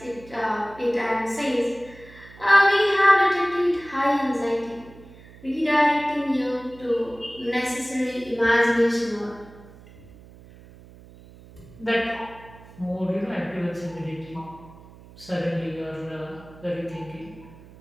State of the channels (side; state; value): right; noise; hum, 21 dB below the sound